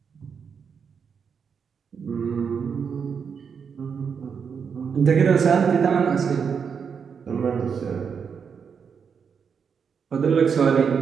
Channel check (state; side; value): quieter; left; 6.5 dB